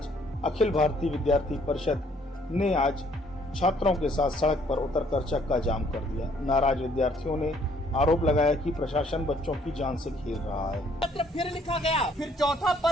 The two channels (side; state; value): both; normal; correlation 0.64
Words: अखिल भारतीय विद्यार्थी परिषद ने आज छात्रों के साथ सड़क पर उतरकर चक्का जाम कर दिया। नाराज विद्यार्थियों ने आरोप लगाया कि प्रशासन बच्चों की जान से खेल रहा है। पत्र फिर लिखा गया, फिर चौथा